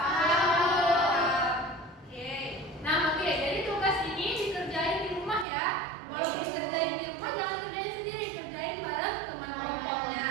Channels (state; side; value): drops out; left; at 5.5 s